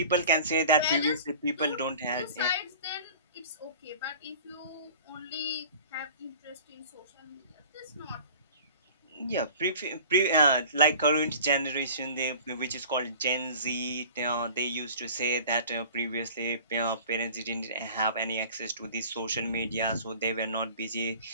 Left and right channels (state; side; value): inverted; both; correlation -0.43